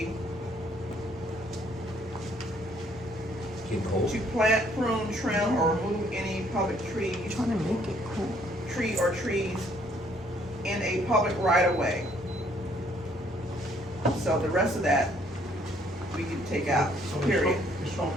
Get cold. to plant, prune, trim, or remove any public trees, Trying to make it cool. tree or trees in a public right of way. So the rest of that, we can take out, So the period. Shoal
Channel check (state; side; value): normal; both; correlation 0.65